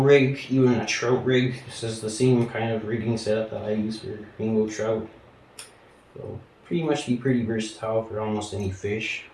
even a trout rig. This is the same kind of rigging setup that I use for rainbow trout. So pretty much be pretty versatile for almost any fish.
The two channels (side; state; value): both; identical; correlation 1.00